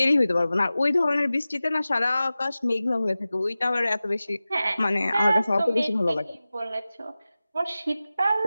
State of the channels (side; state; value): both; inverted; correlation -0.96